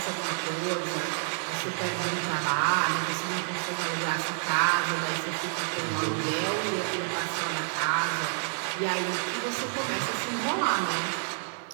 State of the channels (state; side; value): silent; left; 59 dB below the other